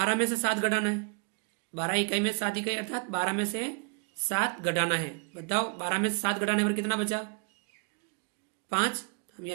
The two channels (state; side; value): quieter; left; 37.9 dB